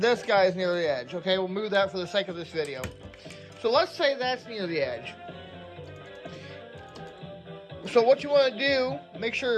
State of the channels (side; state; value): both; identical; correlation 1.00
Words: guy is near the edge. Okay, we'll move that for the sake of this video. So let's say that's near the edge. So what you want to do, make sure